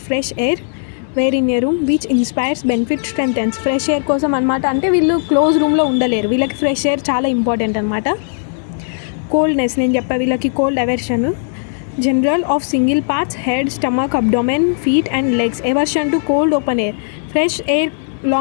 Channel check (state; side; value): silent; right; digital silence